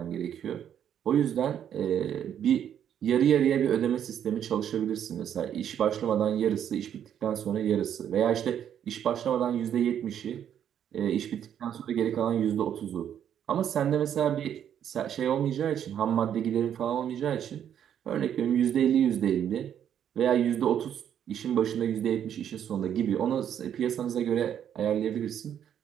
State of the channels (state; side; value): quieter; left; 9.4 dB